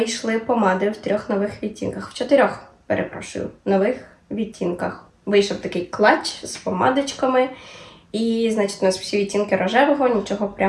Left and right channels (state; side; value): identical; both; correlation 1.00